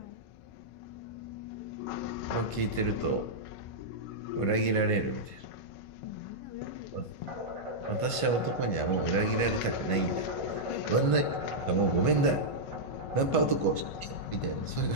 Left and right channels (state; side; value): late; right; 1.5 ms